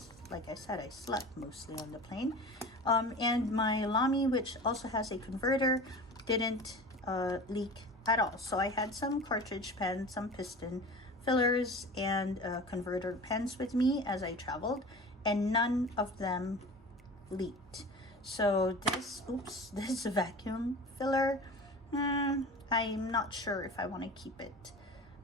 like I said, I slept mostly on the plane. And my Lamy, which also has a converter, didn't leak at all. So I had some cartridge pens, some piston fillers, and converter pens with me as I traveled, and none of them leaked. So this, oops, this vacuum filler, I'm not sure if I want to keep it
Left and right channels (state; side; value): normal; both; correlation 0.36